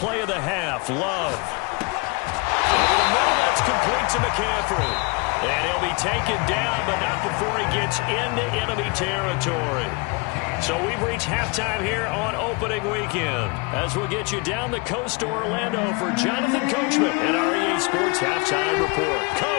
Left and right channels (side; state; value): right; quieter; 29.6 dB